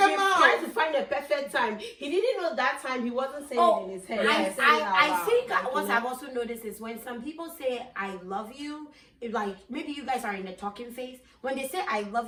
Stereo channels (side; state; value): both; identical; correlation 1.00